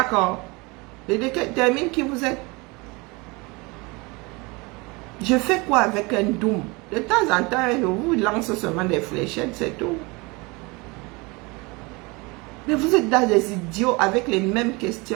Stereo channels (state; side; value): quieter; left; 26.3 dB